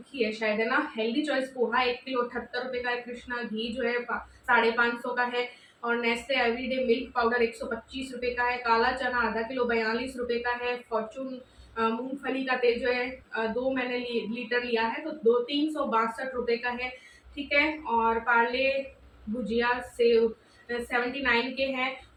है शायद, है ना। हेल्दी चॉइस पोहा 1 किलो 78 रुपए का है। कृष्णा घी जो है 550 का है। और नेस्ले एवरीडे मिल्क पाउडर 125 रुपए का है। काला चना आधा किलो 42 रुपए का है। फॉर्चून मूंगफली का तेल जो है दो मैंने लीटर लिया है, तो 362 रुपए का है, ठीक है। और पार्ले भुजिया से 79 के हैं,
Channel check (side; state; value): both; identical; correlation 1.00